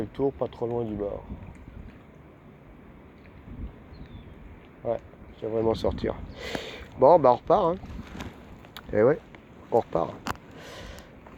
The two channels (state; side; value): identical; both; correlation 1.00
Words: le tour pas trop loin du bord. Ouais, je devrais m'en sortir. Bon, bah on repart. Hein. Et ouais, on repart.